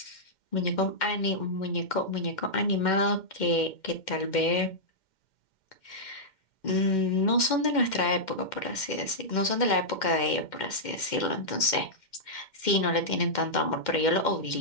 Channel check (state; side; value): late; right; 2.1 ms